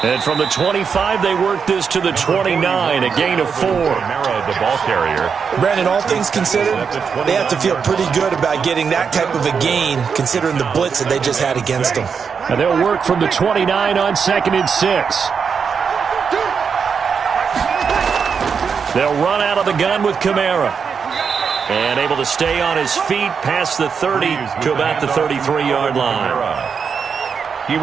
And from the 25, they work this to the 29, a gain of 4. The ball carrier. Brandon, all things considered, they have to feel pretty good about getting that type of a gain, considering the blitz that they just had against them. And they'll work from the 29 on 2nd and 6. They'll run out of the gun with Kamara. And able to stay on his feet past the 30 to about the 33-yard line. He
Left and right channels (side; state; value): left; quieter; 6.2 dB